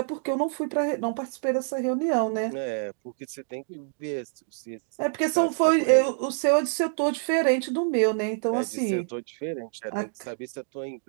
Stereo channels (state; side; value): silent; left; digital silence